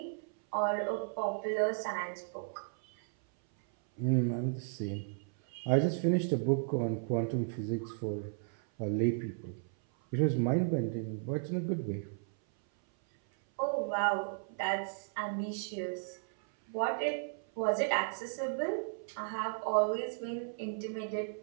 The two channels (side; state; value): left; silent; 55 dB below the other